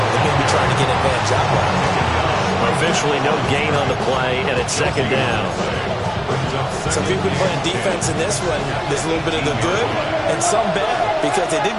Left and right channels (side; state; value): both; identical; correlation 1.00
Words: and maybe trying to get advantage out loud. Officially no gain on the play, and it's 2nd down. So if you've been playing defense in this one, there's a little bit of the good and some bad, because they did